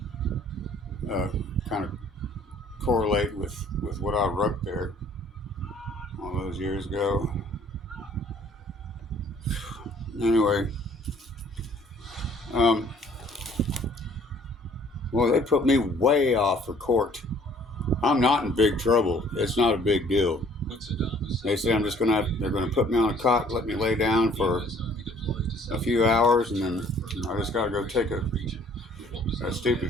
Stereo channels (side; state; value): both; normal; correlation 0.57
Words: kind of correlate with what I wrote there all those years ago. Anyway, well, they put me way off for court. I'm not in big trouble. It's not a big deal. They say they're gonna put me on a cot, let me lay down for a few hours, and then I just gotta go take a